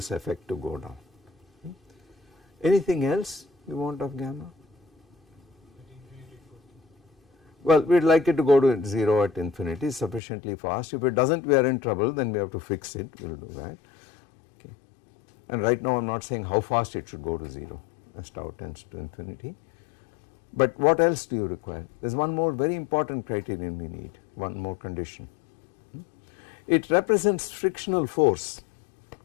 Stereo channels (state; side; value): drops out; right; at 10.2 s